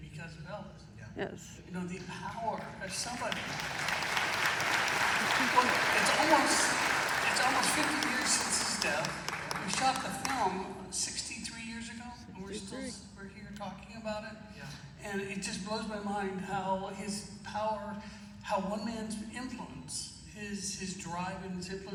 because of Elvis. Yes. You know, the power of somebody. Well, it's almost 50 years since his death. We shot the film 63 years ago, and we're here talking about it. Yeah. And it just blows my mind how his power, how one man's influence, his drive and his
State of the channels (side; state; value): both; identical; correlation 1.00